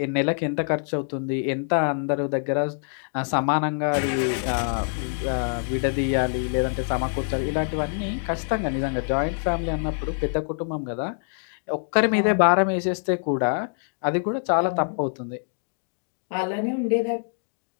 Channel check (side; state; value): right; silent; digital silence